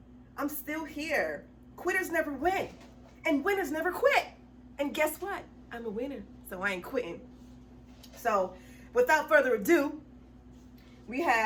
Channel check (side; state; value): both; identical; correlation 1.00